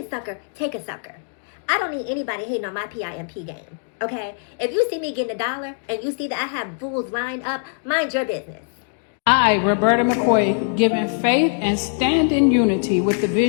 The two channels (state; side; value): silent; right; digital silence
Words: sucker, take a sucker. I don't need anybody hating on my PIMP game. Okay? If you see me getting $1 and you see that I have fools lined up, mind your business. I, Roberta McCoy, given faith and stand in unity with the